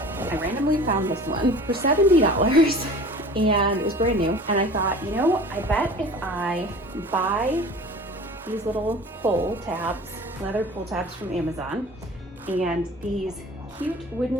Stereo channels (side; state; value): both; normal; correlation 0.42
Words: I randomly found this one for $70 and it was brand new. And I thought, you know, I bet if I buy these little pull tabs, leather pull tabs from Amazon, and these cute